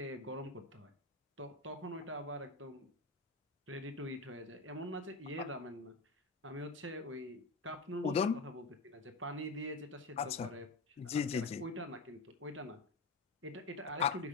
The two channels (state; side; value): quieter; right; 3.7 dB